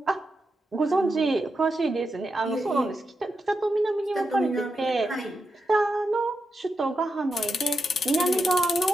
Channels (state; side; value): normal; both; correlation 0.86